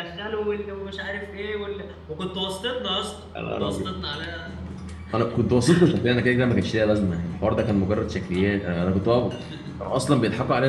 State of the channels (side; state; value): both; identical; correlation 1.00